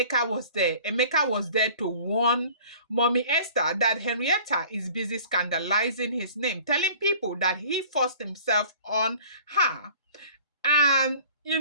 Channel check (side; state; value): both; inverted; correlation -0.47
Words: was there? Emeka was there to warn Mommy Esther that Henrietta is busy scandalizing his name, telling people that he forced himself on her. And,